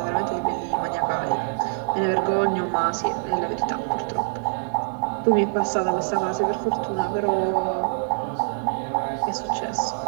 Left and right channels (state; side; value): silent; left; 61 dB below the other